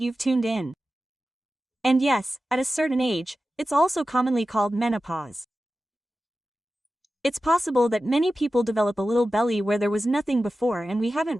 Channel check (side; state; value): both; normal; correlation 0.94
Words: you've tuned in. And yes, at a certain age, it's also commonly called menopause. It's possible that many people develop a little belly where there was nothing before, and we